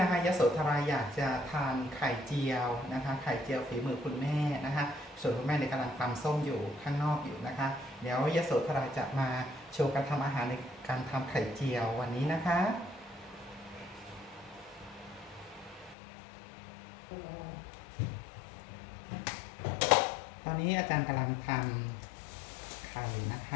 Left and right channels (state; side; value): drops out; right; at 16.0 s